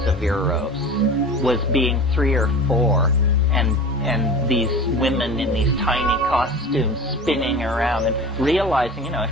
of Eros was being 3 or 4, and these women in these tiny costumes spinning around and realizing, you know,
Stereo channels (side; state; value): both; normal; correlation 0.35